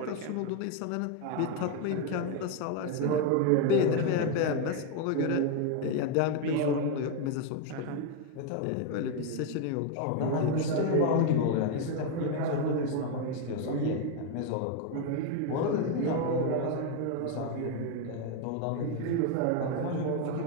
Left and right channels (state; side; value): different; both; correlation 0.01